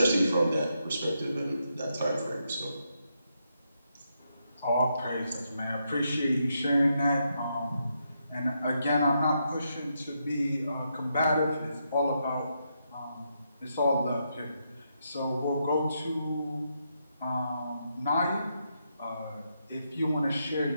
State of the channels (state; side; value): inverted; both; correlation -0.81